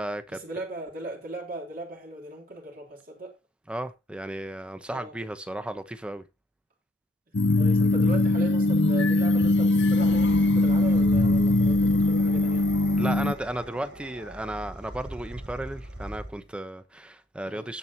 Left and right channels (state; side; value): normal; both; correlation 0.70